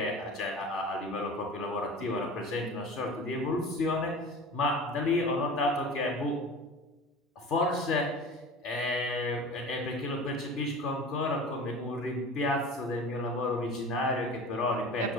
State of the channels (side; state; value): both; normal; correlation 0.36